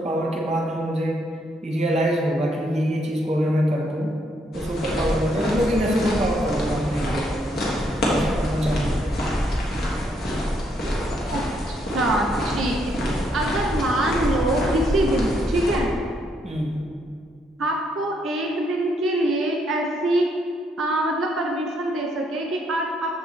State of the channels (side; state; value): both; normal; correlation 0.73